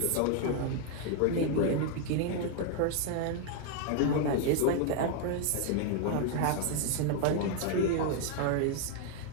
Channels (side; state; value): both; different; correlation 0.00